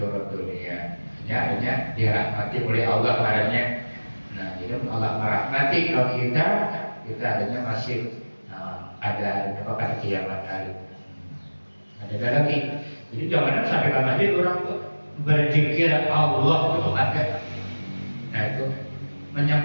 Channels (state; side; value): inverted; both; correlation -1.00